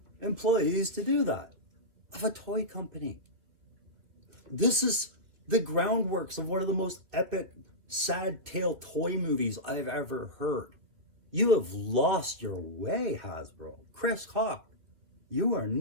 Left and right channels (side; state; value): left; late; 2.6 ms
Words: employees to do that, of a toy company. This is the groundworks of one of the most epic, sad tale toy movies I've ever heard. You have lost your way, Hasbro. Chris Hawk, you are